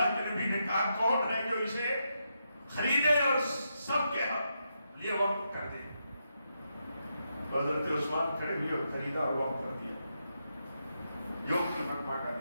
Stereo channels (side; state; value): both; inverted; correlation -0.83